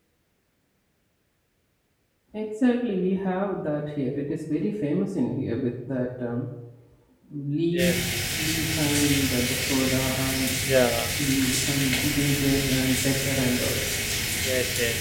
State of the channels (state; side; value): identical; both; correlation 1.00